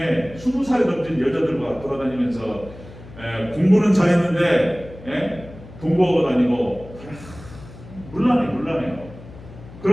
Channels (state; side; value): noise; left; hum, 17 dB below the sound